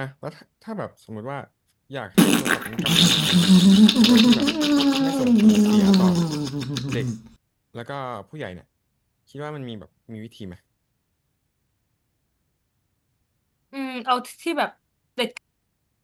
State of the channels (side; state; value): both; identical; correlation 1.00